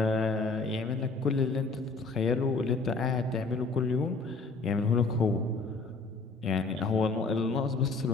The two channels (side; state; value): right; quieter; 3.9 dB